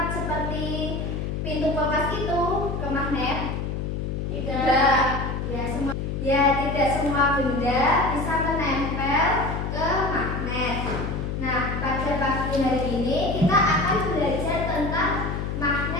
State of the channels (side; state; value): left; noise; hum, 3 dB below the sound